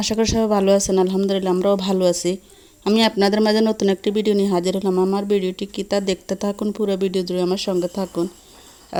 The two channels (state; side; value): identical; both; correlation 1.00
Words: আশা করি সবাই ভালো আছেন। আলহামদুলিল্লাহ আমরাও ভালো আছি। আমি আপনাদের মাঝে নতুন একটি ভিডিও নিয়ে হাজির হলাম। আমার ভিডিওটি কি তা দেখতে থাকুন, পুরো ভিডিও জুড়ে আমার সঙ্গে থাকুন।